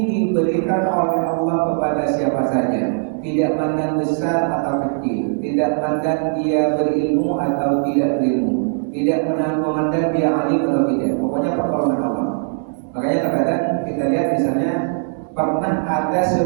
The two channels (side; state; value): left; silent; digital silence